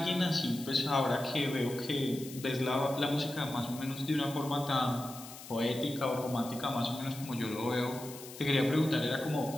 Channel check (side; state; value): left; noise; hiss, 14 dB below the sound